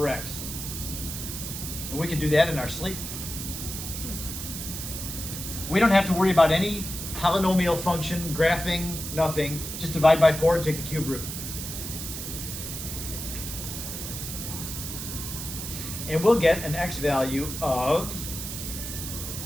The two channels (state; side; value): noise; right; hiss, 7 dB below the sound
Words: x. And we can do that in our sleep. We don't have to worry about any polynomial function, graphing, nothing. Just divide by 4 and take the cube root. And we'll get an x value of